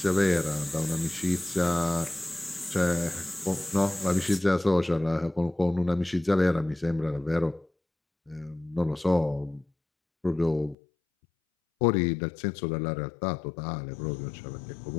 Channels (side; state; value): right; drops out; at 10.8 s